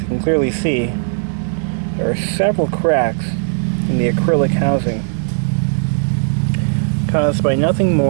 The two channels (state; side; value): silent; left; digital silence